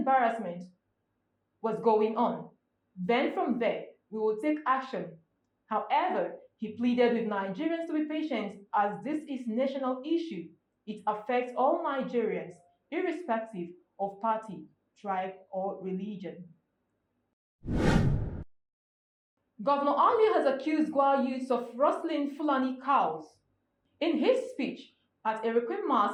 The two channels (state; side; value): identical; both; correlation 1.00